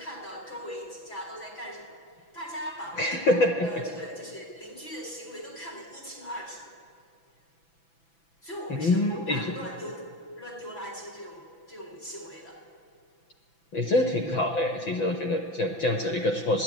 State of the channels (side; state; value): right; late; 6.0 ms